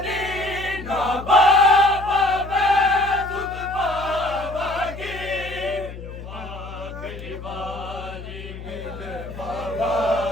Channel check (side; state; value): left; noise; hum, 12 dB below the sound